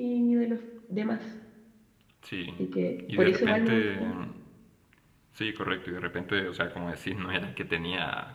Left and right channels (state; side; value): identical; both; correlation 1.00